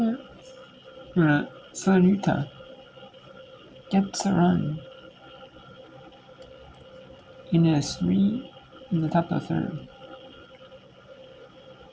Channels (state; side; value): identical; both; correlation 1.00